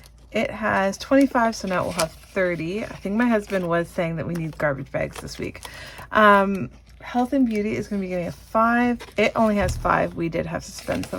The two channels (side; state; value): both; identical; correlation 1.00